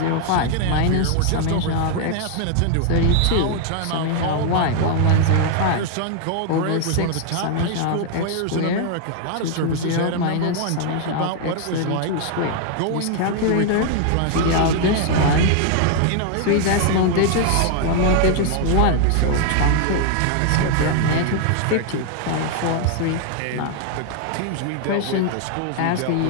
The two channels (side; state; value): both; different; correlation 0.00